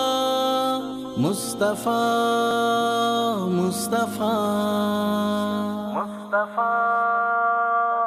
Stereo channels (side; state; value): both; identical; correlation 1.00